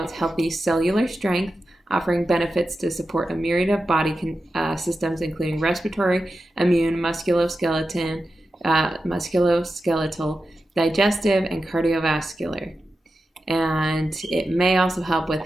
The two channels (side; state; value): both; normal; correlation 0.91